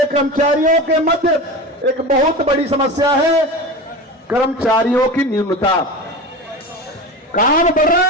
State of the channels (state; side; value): normal; both; correlation 0.28